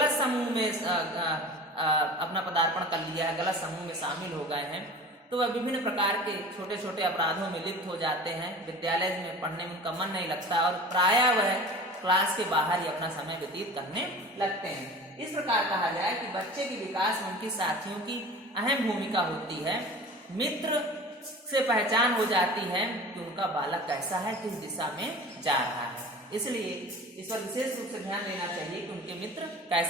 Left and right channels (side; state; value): both; normal; correlation 0.38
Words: समूह में अपना पदार्पण कर लिया है, गलत समूह में शामिल हो गए हैं, तो वह विभिन्न प्रकार के छोटे छोटे अपराधों में लिप्त हो जाते हैं, विद्यालय में पढ़ने में उनका मन नहीं लगता और प्रायः वह क्लास के बाहर ही अपना समय व्यतीत करने लगते हैं। इस प्रकार कहा जाए कि बच्चे के विकास में उनके साथियों की अहम भूमिका होती है। मित्र से पहचान हो जाती है कि उनका बालक कैसा है, किस दिशा में जा रहा है। इसलिए इस पर विशेष रूप से ध्यान देना चाहिए कि उनके मित्र